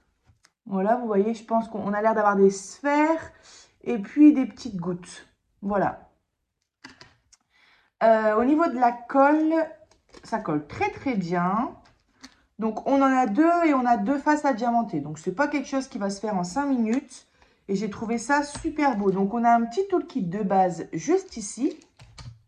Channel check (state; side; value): identical; both; correlation 1.00